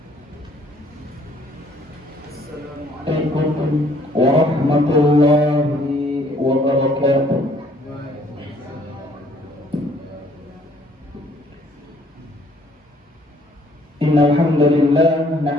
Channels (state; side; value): normal; both; correlation 0.61